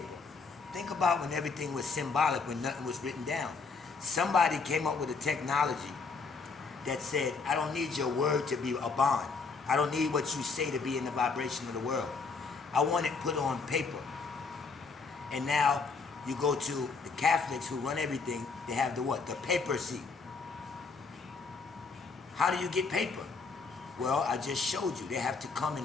think about when everything was symbolic, when nothing was written down. Somebody came up with a technology that said, I don't need your word to be a bond. I don't need what you say to be in the vibration of the world. I want it put on paper. And now you go to the Catholics who run everything, they have the what? The papacy. How do you get paper? Well, I just showed you. They have to come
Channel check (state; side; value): quieter; right; 4.6 dB